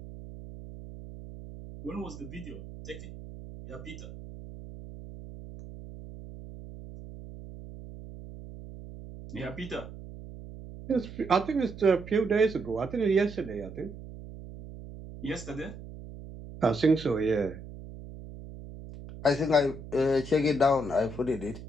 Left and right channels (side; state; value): right; noise; hum, 13 dB below the sound